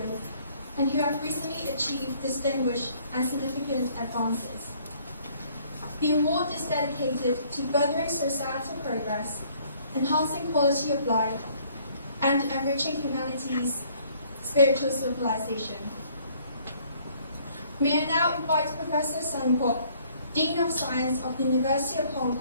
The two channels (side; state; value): both; inverted; correlation -0.61